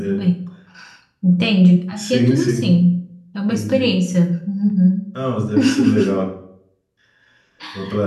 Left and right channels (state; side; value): identical; both; correlation 1.00